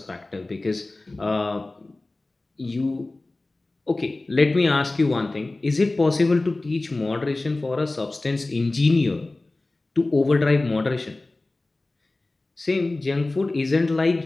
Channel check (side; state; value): right; quieter; 3.0 dB